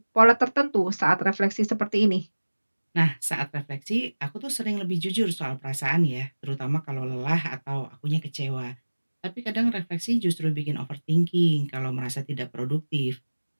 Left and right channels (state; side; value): inverted; both; correlation -1.00